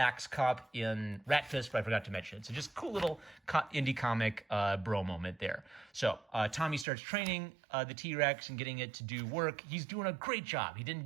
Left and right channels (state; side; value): drops out; left; at 6.9 s